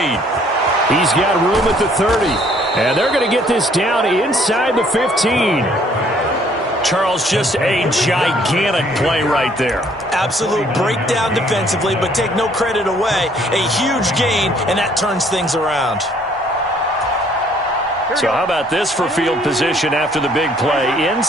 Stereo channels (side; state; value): both; normal; correlation 0.62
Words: He's got room at the 30. And they're going to get this down inside the 15. Charles, just a gigantic play right there. Absolute breakdown defensively, but take no credit away. A huge gain, and that turns things around. So how about this for field position after the big play?